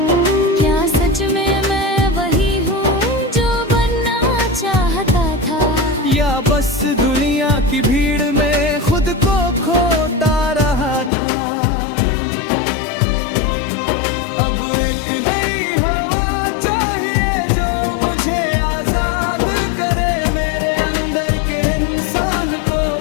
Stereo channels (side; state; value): right; drops out; at 11.1 s